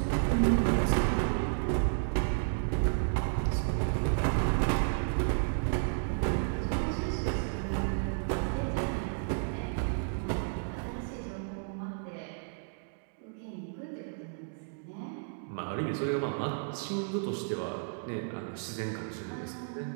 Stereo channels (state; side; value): silent; left; digital silence